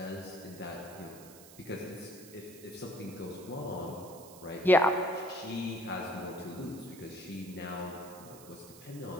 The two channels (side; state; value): right; noise; hiss, 18 dB below the sound